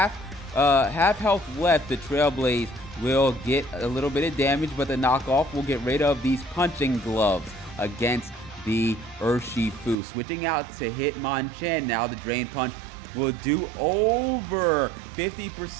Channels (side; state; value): left; drops out; at 10.0 s